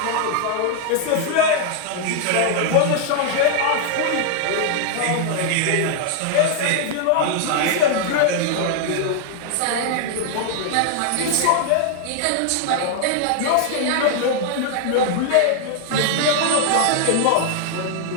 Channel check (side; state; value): both; different; correlation 0.00